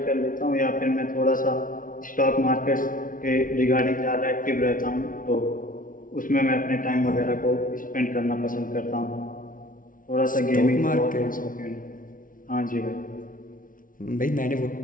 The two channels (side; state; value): right; late; 0.39 ms